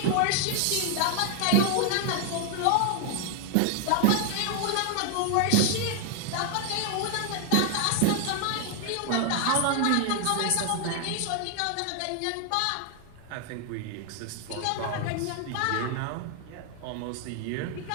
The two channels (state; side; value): different; both; correlation 0.00